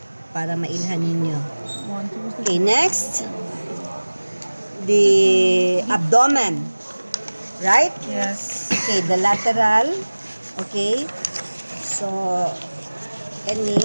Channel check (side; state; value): both; inverted; correlation -1.00